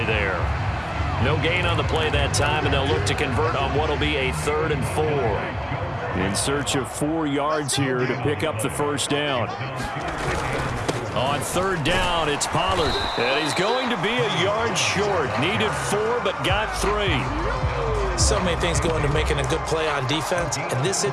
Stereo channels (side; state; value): both; identical; correlation 1.00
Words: there. No gain on the play that time, and they'll look to convert on what will be a 3rd and 4. In search of 4 yards here to pick up the 1st down. On 3rd down, it's Pollard. And he's going to be a yard short. Needed 4, but got 3. So many things go into making a good play on defense. In this